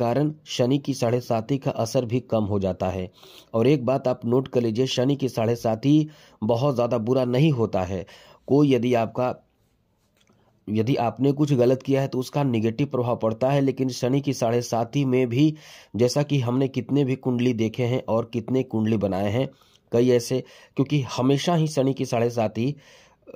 शनि की 7.5 का असर भी कम हो जाता है। और एक बात आप नोट कर लीजिए, शनि की 7.5 बहुत ज़्यादा बुरा नहीं होता है। कोई यदि आपने कुछ गलत किया है तो उसका निगेटिव प्रभाव पड़ता है, लेकिन शनि की 7.5 में भी जैसा कि हमने कितने भी कुंडली देखे हैं और कितने कुंडली बनाए हैं, कई ऐसे, क्योंकि हमेशा ही शनि की 7.5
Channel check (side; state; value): both; identical; correlation 1.00